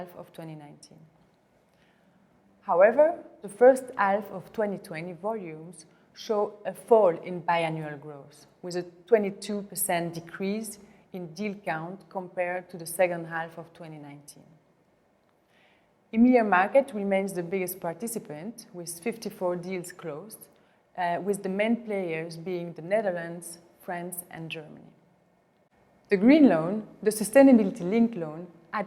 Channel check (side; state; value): both; identical; correlation 1.00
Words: of 2019. However, the first half of 2020 volumes show a fall in biannual growth, with a 22% decrease in deal count compared to the second half of 2019. EMEA market remains the biggest participant, with 54 deals closed, with the main players being the Netherlands, France, and Germany. The green loan, the sustainability-linked loan, are